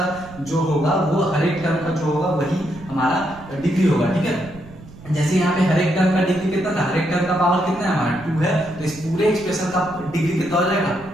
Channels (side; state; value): right; noise; rumble, 19 dB below the sound